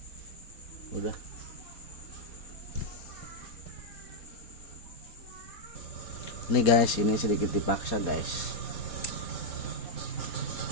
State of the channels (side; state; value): right; late; 4.3 ms